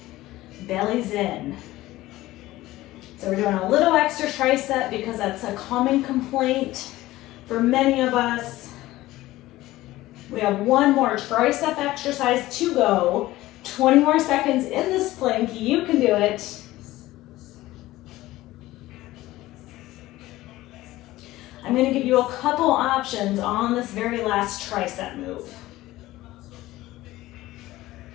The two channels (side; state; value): right; quieter; 16.9 dB